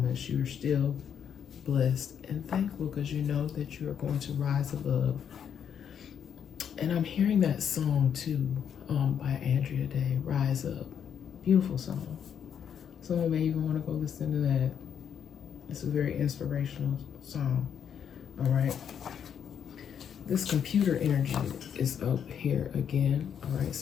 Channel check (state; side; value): quieter; right; 8.2 dB